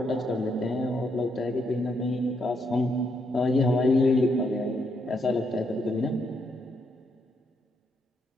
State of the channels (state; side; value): normal; both; correlation 0.77